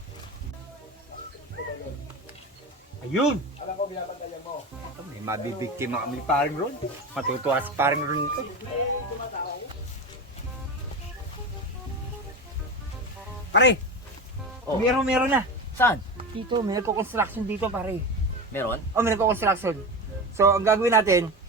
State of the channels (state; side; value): normal; both; correlation 0.24